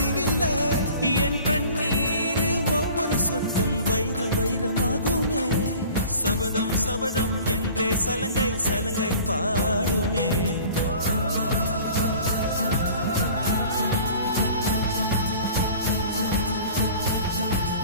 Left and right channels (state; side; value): inverted; both; correlation -0.45